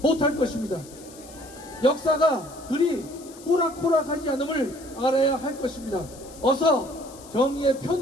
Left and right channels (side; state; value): left; noise; hiss, 20 dB below the sound